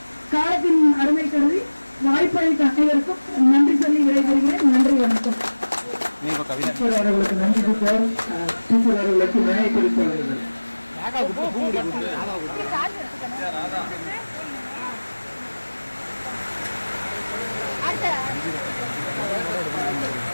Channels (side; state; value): both; inverted; correlation -1.00